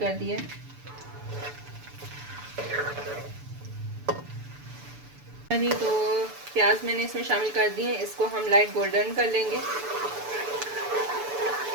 दिया। तो प्याज मैंने इसमें शामिल कर दिए, इसको हम लाइट गोल्डन कर लेंगे।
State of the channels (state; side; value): late; left; 6.9 ms